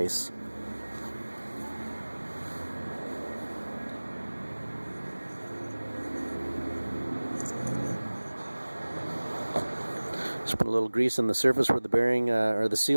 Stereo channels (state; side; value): inverted; both; correlation -1.00